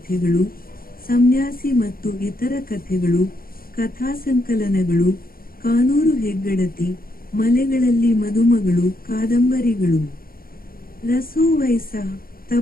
ಸನ್ಯಾಸಿ ಮತ್ತು ಇತರ ಕಥೆಗಳು, ಕಥಾಸಂಕಲನಗಳು, ಕಾನೂರು ಹೆಗ್ಗಡತಿ, ಮಲೆಗಳಲ್ಲಿ ಮದುಮಗಳು ಕಾದಂಬರಿಗಳು, ರಸೋವೈಸ,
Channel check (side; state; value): right; late; 0.42 ms